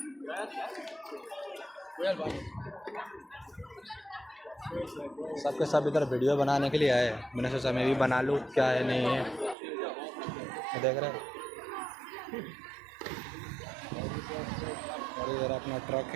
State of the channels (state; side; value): drops out; left; at 9.6 s